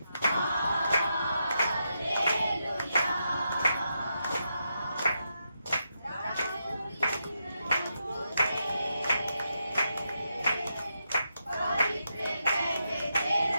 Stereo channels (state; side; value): inverted; both; correlation -0.84